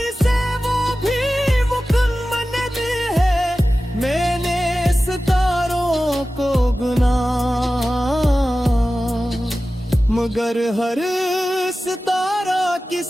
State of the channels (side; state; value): both; normal; correlation 0.95